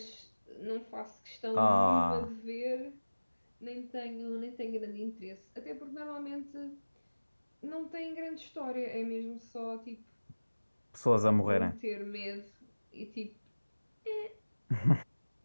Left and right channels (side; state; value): both; inverted; correlation -1.00